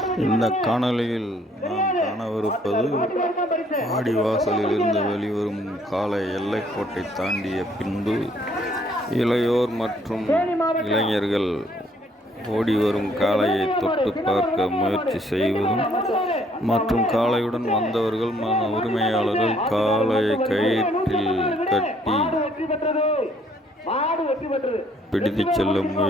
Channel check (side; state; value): both; normal; correlation 0.65